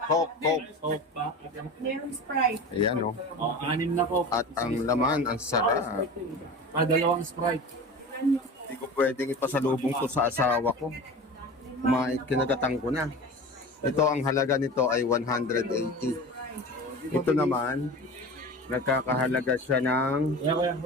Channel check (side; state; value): both; normal; correlation 0.33